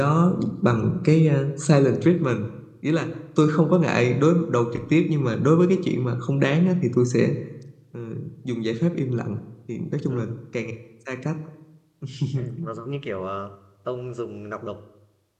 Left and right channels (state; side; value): identical; both; correlation 1.00